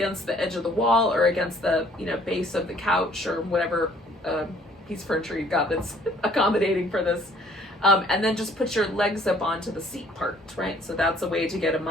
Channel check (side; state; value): both; normal; correlation 0.59